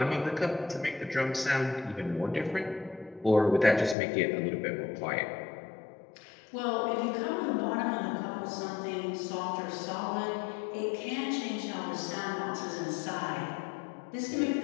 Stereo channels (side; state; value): right; drops out; at 4.0 s